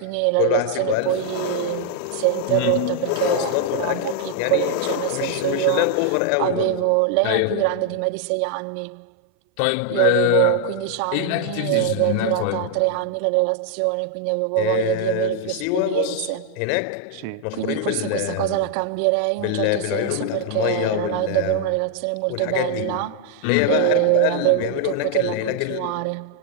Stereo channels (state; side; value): different; both; correlation 0.00